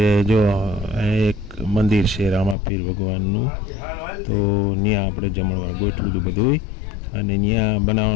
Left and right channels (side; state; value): right; drops out; at 2.6 s